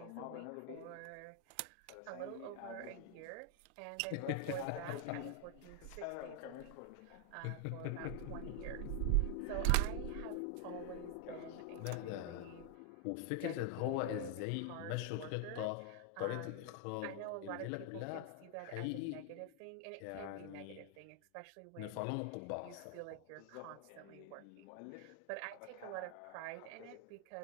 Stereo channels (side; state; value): both; different; correlation 0.00